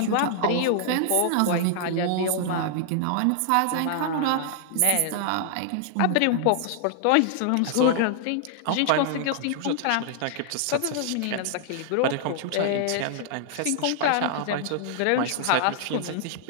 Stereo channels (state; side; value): different; both; correlation -0.01